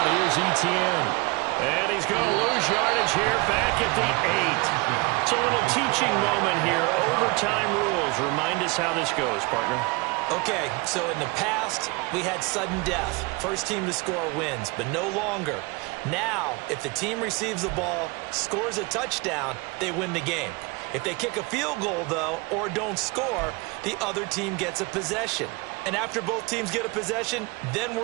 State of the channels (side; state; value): left; quieter; 26.3 dB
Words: here's Etienne. And he's going to lose yardage here back at the 8. It's a little teaching moment here. Overtime rules. Remind us how this goes, partner. Okay, so in the past, we had sudden death. First team to score wins, but no longer. Now, if the team receives the ball, scores a touchdown, they win the game. If they kick a field goal, though, or don't score, the other team gets a possession. And after both teams get a possession, then